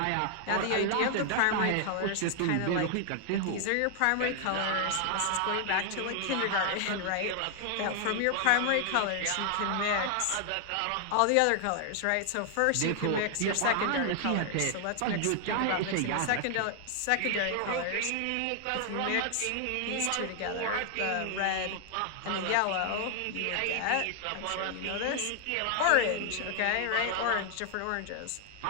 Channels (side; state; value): both; different; correlation 0.00